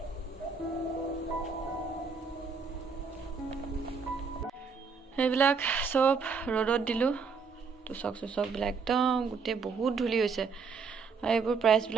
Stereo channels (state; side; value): quieter; left; 5.2 dB